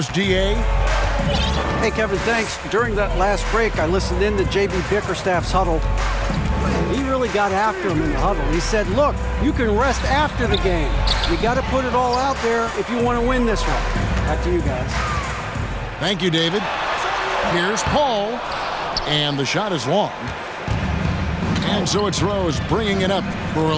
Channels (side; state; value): both; identical; correlation 1.00